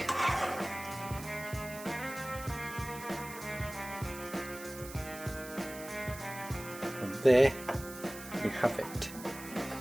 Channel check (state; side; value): noise; right; hiss, 14 dB below the sound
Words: There you have it.